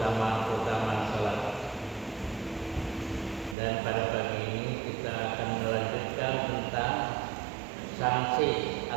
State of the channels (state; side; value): drops out; left; at 3.6 s